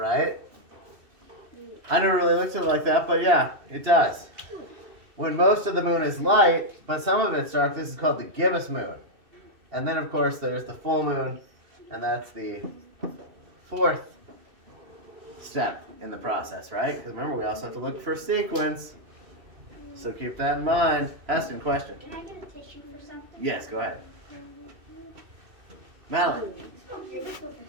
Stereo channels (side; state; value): left; late; 2.6 ms